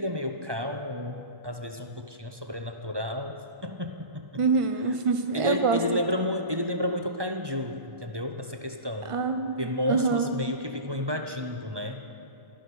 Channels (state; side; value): late; left; 1.2 ms